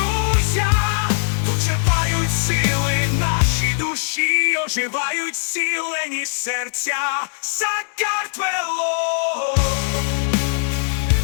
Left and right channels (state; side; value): silent; right; 66 dB below the other